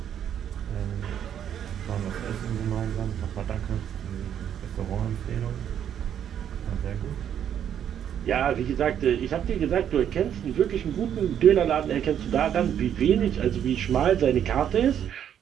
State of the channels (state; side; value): quieter; left; 9.4 dB